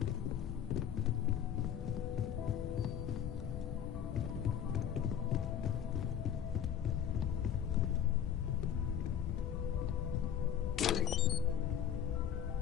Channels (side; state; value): right; quieter; 9.1 dB